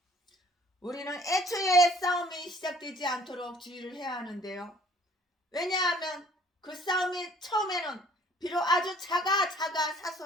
우리는 애초에 싸움이 시작되지 않도록 주의를 해야 하는데요. 왜냐하면 그 싸움이 처음에는 비록 아주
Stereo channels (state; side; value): normal; both; correlation 0.56